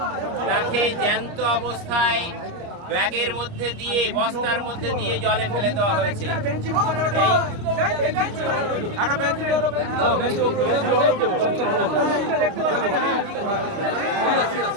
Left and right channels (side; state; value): left; late; 30 ms